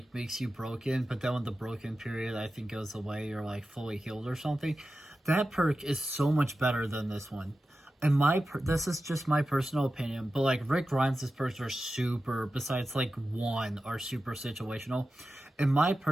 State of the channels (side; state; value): both; normal; correlation 0.93